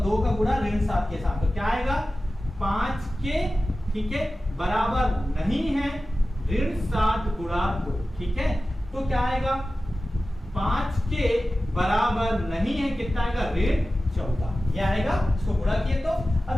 2 का गुणा -7 के साथ, तो क्या आएगा 5k, ठीक है, बराबर नहीं है -7 गुणा 2। ठीक है, तो क्या आएगा 5k बराबर नहीं है, कितना आएगा -14, ये आएगा। इसको गुणा किए तो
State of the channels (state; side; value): normal; both; correlation 0.95